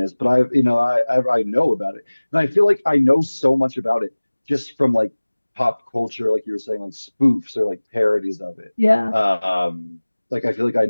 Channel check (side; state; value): both; inverted; correlation -1.00